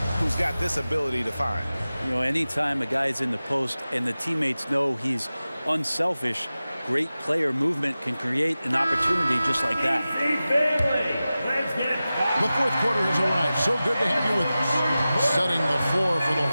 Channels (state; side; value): inverted; both; correlation -0.95